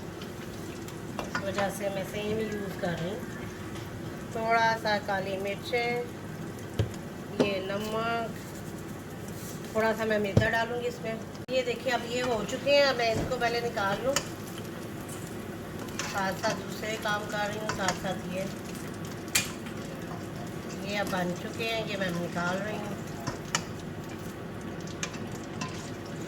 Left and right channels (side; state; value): both; identical; correlation 1.00